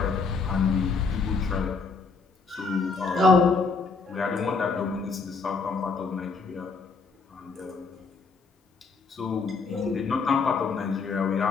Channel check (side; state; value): right; quieter; 4.6 dB